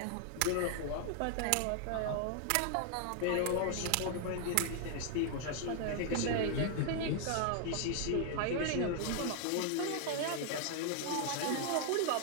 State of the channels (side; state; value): both; different; correlation 0.00